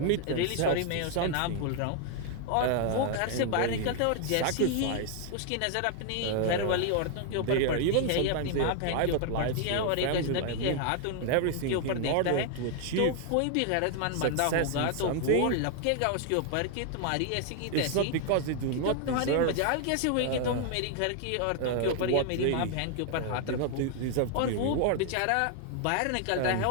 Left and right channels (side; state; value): both; different; correlation 0.00